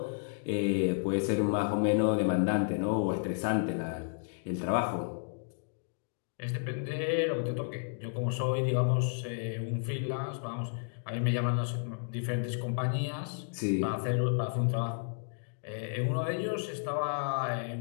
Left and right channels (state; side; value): silent; right; digital silence